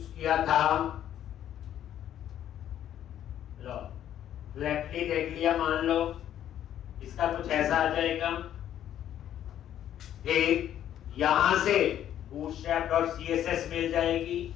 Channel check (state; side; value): quieter; right; 11.0 dB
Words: किया था, लो फ्लैटली देख लिया, मान लो इसका कुछ ऐसा आ जाएगा। एक यहां से bootstrap.css मिल जाएगी।